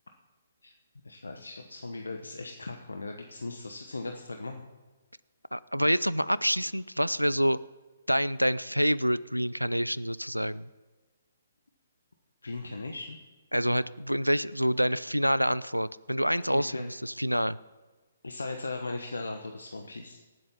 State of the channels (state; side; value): inverted; both; correlation -0.99